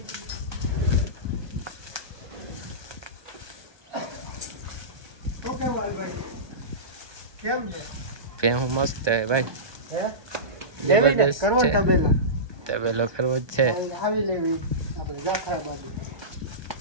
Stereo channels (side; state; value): left; late; 1.2 ms